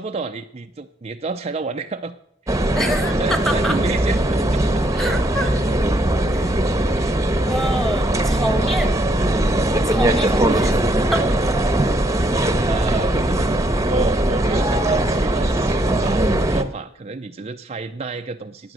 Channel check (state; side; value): normal; both; correlation 0.72